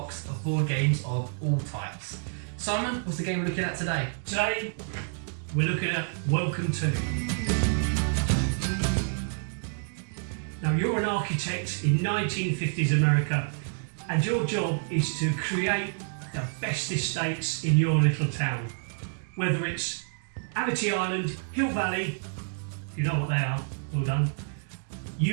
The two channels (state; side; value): silent; left; digital silence